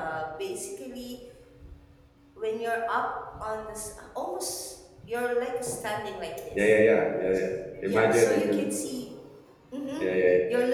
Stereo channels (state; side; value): identical; both; correlation 1.00